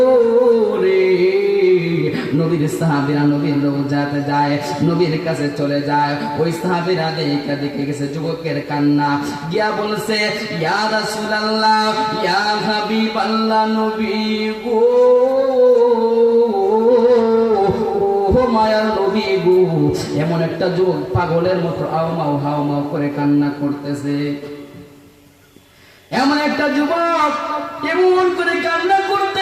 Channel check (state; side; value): identical; both; correlation 1.00